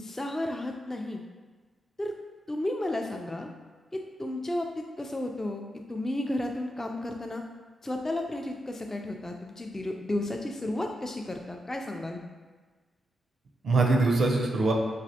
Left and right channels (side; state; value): both; normal; correlation 0.85